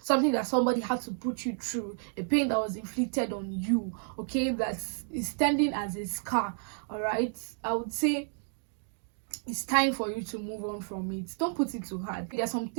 something that somebody had to put you through, a pain that was inflicted on you, okay, that is standing as a scar. All right, I would say it's time for you to move on from it. Don't put it too hard. There are some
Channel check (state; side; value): silent; left; 57 dB below the other